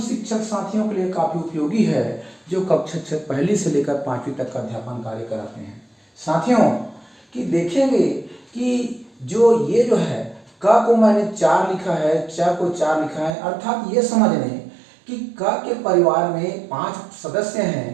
साथियों के लिए काफ़ी उपयोगी है जो कक्षा पहली से लेकर 5वीं तक का अध्यापन कार्य कराते हैं। साथियों कि देखेंगे कि ये जो है क को मैंने 4 लिखा है, च को 4 लिखा है, अर्थात ये समझ लें कि क के परिवार में 5 सदस्य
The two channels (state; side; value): drops out; left; at 13.4 s